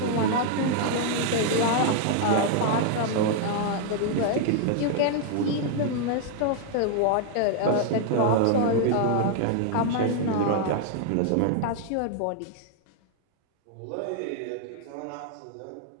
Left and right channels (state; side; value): different; both; correlation 0.00